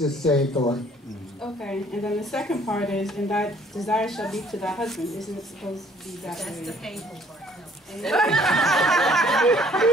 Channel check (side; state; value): both; normal; correlation 0.59